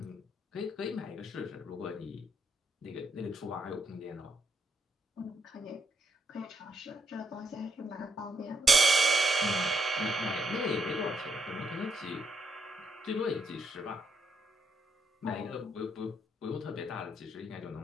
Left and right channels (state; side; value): normal; both; correlation 0.75